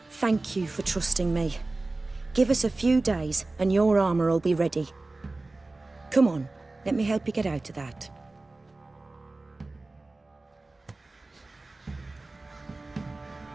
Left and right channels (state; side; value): quieter; left; 3.2 dB